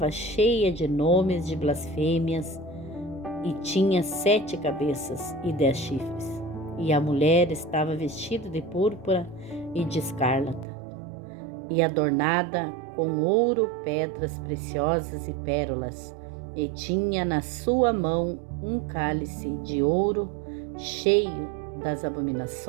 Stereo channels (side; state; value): left; drops out; at 10.7 s